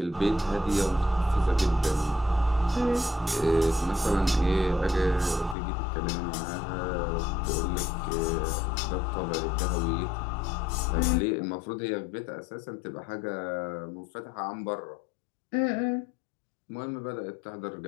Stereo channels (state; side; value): drops out; right; at 5.6 s